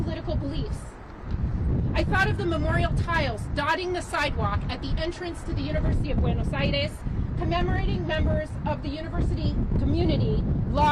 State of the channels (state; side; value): identical; both; correlation 1.00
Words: beliefs. I thought of the memorial tiles dotting the sidewalk at the entrance to the University of Buenos Aires, commemorating members of the university community